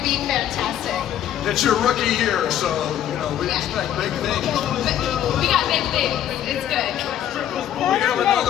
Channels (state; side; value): quieter; right; 10.9 dB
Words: be fantastic. It's your rookie year, so we expect big things. We got big things. It's good. We have